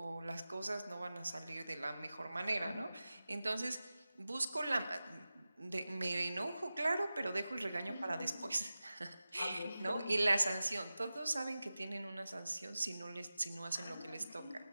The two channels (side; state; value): both; inverted; correlation -0.95